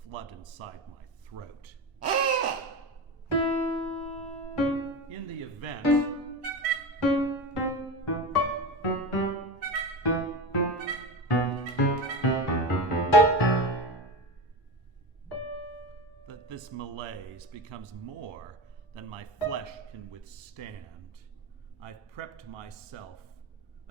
flood inside my throat. In the event that this malaise becomes more than my flesh can withstand, I've prepped myself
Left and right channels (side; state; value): both; normal; correlation 0.23